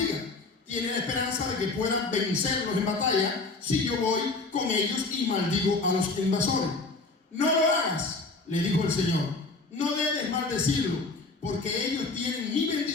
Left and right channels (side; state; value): right; quieter; 3.6 dB